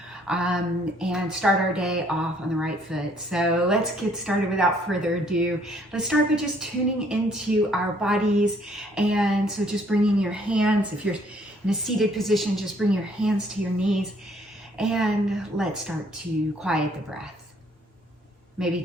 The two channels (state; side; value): normal; both; correlation 0.63